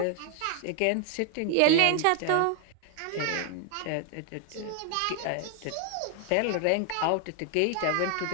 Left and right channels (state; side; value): different; both; correlation 0.00